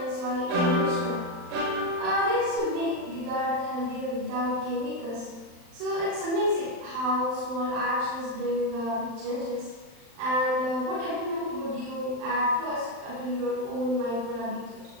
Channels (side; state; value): left; late; 39 ms